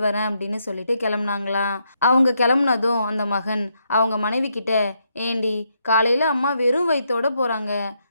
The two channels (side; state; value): both; inverted; correlation -0.78